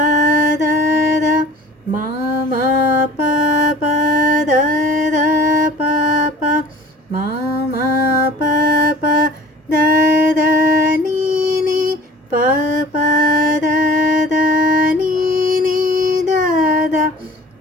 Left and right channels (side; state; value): both; normal; correlation 0.45